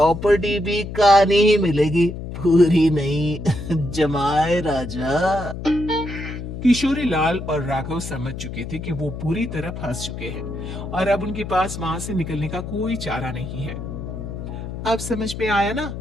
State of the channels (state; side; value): noise; left; hum, 8 dB below the sound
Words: भी कहानी ही मिलेगी, पूरी नहीं। जमाए राजा। किशोरी लाल और राघव समझ चुके थे कि वो बुरी तरह फंस चुके हैं और अब उनके पास वहां से निकलने का कोई चारा नहीं है। अब समझ में आया ना,